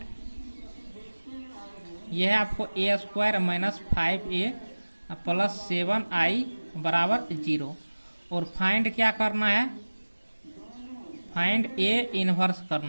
यह है आपको a² - 5a + 7i = 0। और फाइंड क्या करना है, फाइंड ए इनवर्स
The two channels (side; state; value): both; inverted; correlation -1.00